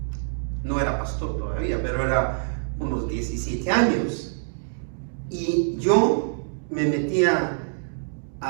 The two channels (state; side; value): silent; left; digital silence